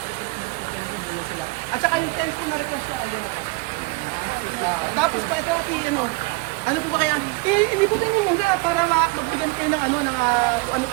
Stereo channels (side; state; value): left; quieter; 26.4 dB